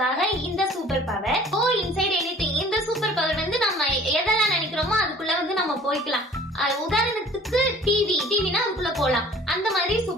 இந்த super power. Go inside anything இந்த சூப்பர் பவர் நம்ம எதெல்லாம் நினைக்கிறோமோ அதுக்குள்ள நம்ம போய்க்கலாம். உதாரணத்துக்கு டிவினா அதுக்குள்ள போலாம். அந்த மாதிரி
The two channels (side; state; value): both; normal; correlation 0.50